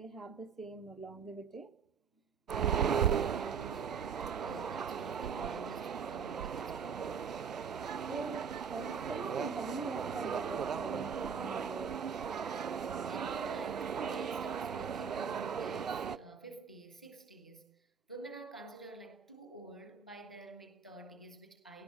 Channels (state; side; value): quieter; left; 6.6 dB